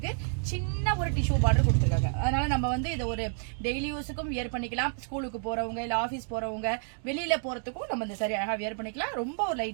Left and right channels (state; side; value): silent; left; 58 dB below the other